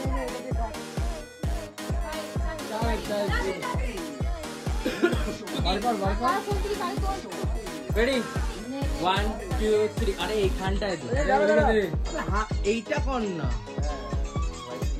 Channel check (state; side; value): identical; both; correlation 1.00